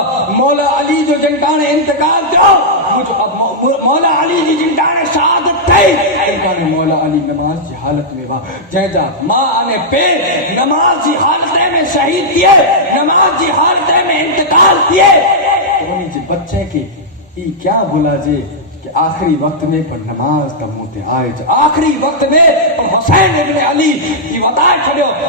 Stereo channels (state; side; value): normal; both; correlation -0.08